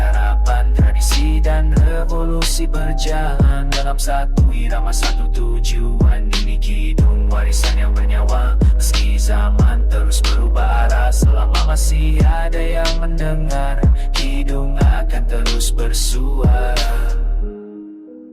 Tradisi dan revolusi berjalan dalam satu irama, satu tujuan. Ini kidung, warisan yang bernyawa, meski zaman terus berubah arah. Selama masih ada yang mendengar, kidung akan terus bersuara.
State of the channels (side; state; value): both; identical; correlation 1.00